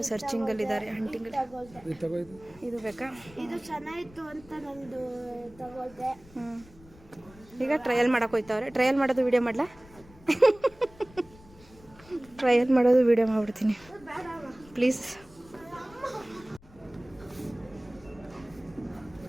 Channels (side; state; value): left; noise; rumble, 23 dB below the sound